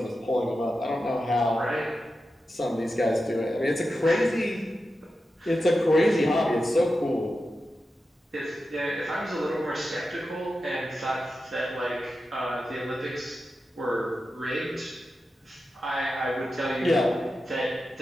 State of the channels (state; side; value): normal; both; correlation 0.91